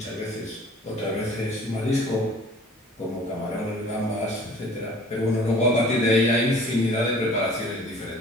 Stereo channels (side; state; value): both; normal; correlation 0.49